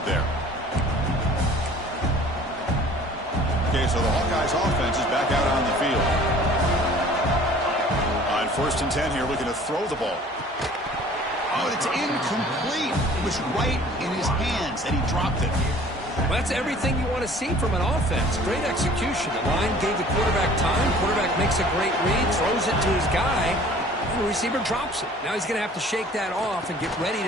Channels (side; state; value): both; normal; correlation 0.50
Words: there. Okay, so the Hawkeyes offense is back out on the field. On 1st and 10 here, looking to throw the ball. Oh, it's incomplete. It was right in his hands, and he dropped it. Well, that's everything you want to see from an offense. Great execution. The line gave the quarterback time. Quarterback makes a great read, throws it to his guy, and the receiver drops it. Now he's going to have to shake that off and get ready